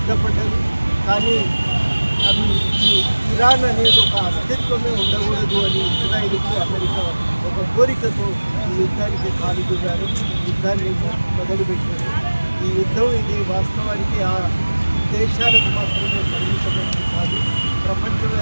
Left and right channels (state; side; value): inverted; both; correlation -1.00